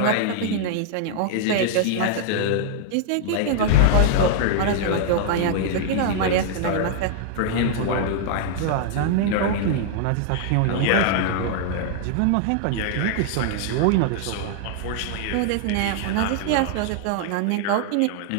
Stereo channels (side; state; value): both; different; correlation -0.01